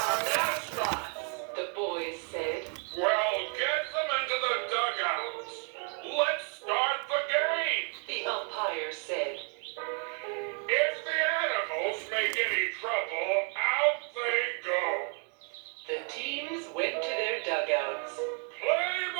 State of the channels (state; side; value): quieter; left; 37.0 dB